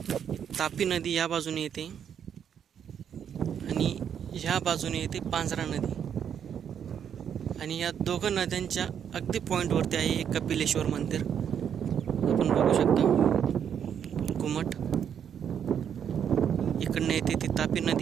तापी नदी या बाजूने येते आणि ह्या बाजूने येते पांजरा नदी। आणि या दोघं नद्यांच्या अगदी पॉईंटवरती आहे एक कपिलेश्वर मंदिर, आपण बघू शकता घुमट। इकडनं येते ती तापी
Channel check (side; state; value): left; quieter; 8.4 dB